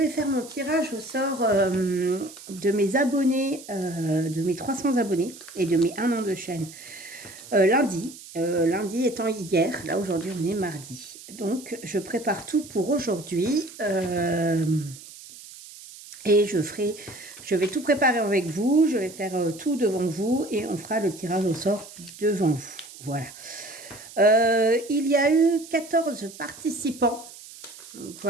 faire mon tirage au sort de mes abonnés, de mes 300 abonnés et de mes 1 an de chaîne lundi. Lundi étant hier, là aujourd'hui on est mardi. Donc je prépare tout pour aujourd'hui. Et je vais tout préparer avec vous, je vais faire tout devant vous et on fera le tirage au sort devant vous. Voilà. Il y a eu 14 participants. Donc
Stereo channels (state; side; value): noise; right; hiss, 17 dB below the sound